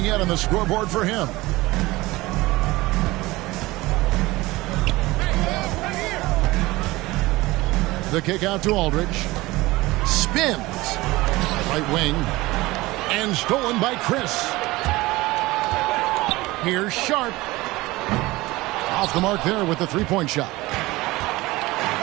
yet on the scoreboard for him. The kick out to Aldridge. Spins. Right wing. And stolen by Chris. Here's Sharp. Off the mark there with the three-point shot.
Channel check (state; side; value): quieter; left; 20.0 dB